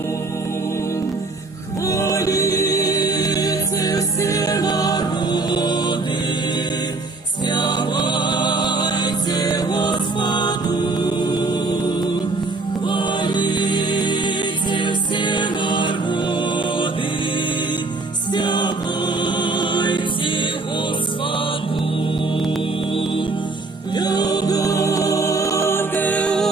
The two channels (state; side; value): quieter; left; 3.4 dB